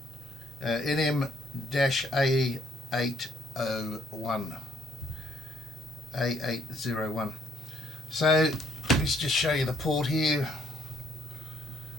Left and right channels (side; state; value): both; normal; correlation 0.67